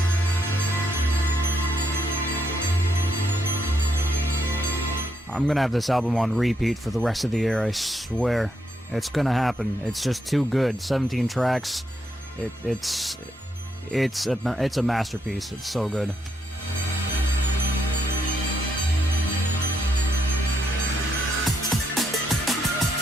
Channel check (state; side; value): normal; both; correlation 0.78